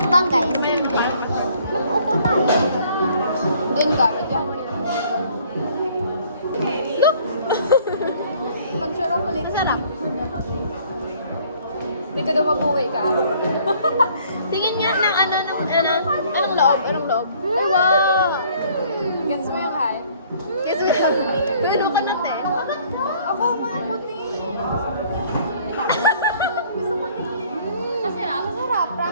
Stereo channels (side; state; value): both; inverted; correlation -0.58